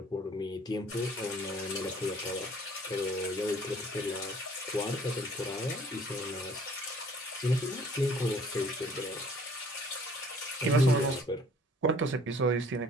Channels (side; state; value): both; normal; correlation 0.55